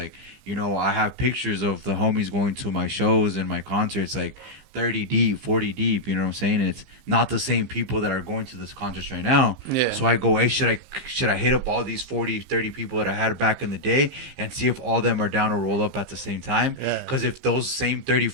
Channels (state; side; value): late; left; 15 ms